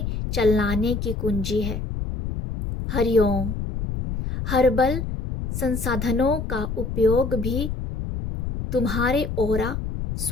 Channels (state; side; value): noise; left; rumble, 4 dB below the sound